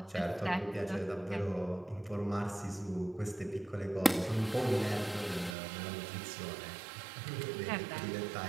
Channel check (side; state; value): left; drops out; at 5.6 s